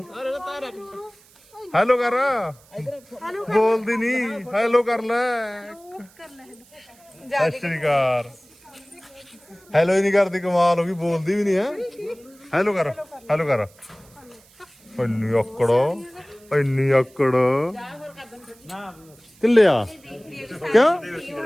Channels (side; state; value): right; noise; hiss, 28 dB below the sound